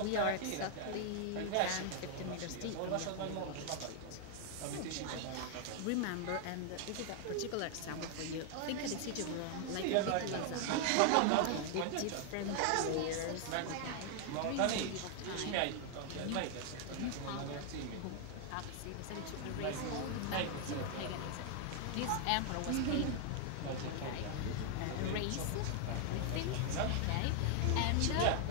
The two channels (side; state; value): both; different; correlation 0.00